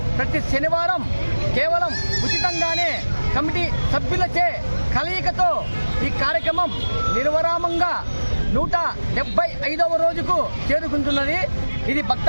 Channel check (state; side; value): inverted; both; correlation -1.00